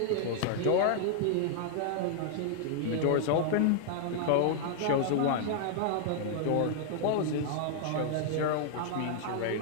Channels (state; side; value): different; both; correlation -0.01